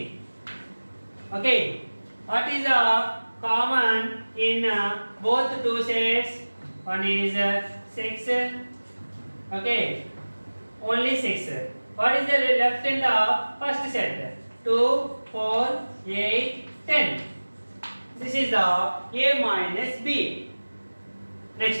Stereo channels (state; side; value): inverted; both; correlation -1.00